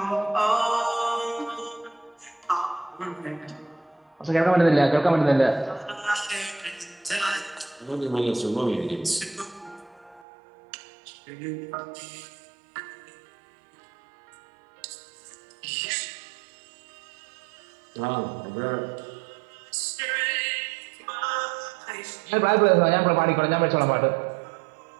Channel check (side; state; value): left; drops out; at 10.2 s